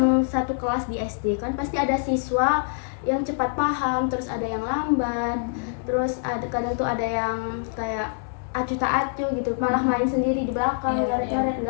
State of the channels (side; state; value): right; silent; digital silence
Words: satu kelas di SD kan pasti ada siswa yang cepat paham, terus ada yang lambat, terus ada kadang tuh ada yang kayak acuh tak acuh gitu, malah main sendiri di belakang, Iya, ngaret-ngaret